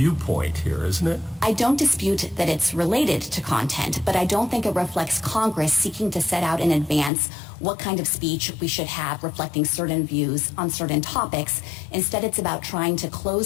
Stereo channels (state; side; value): drops out; right; at 7.1 s